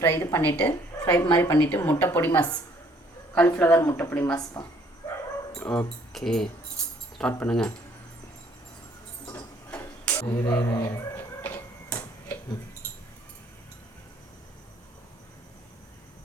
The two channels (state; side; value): normal; both; correlation 0.62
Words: மாதிரி பண்ணிவிட்டு முட்டை பொடி மாஸ், காலிஃப்ளவர் முட்டை பொடி மாஸ்ப்பா. ஓகே, ஸ்டார்ட் பண்ணுங்க.